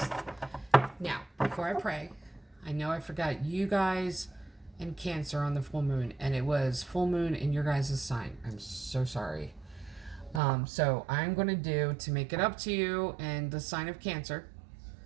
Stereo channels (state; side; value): drops out; left; at 10.4 s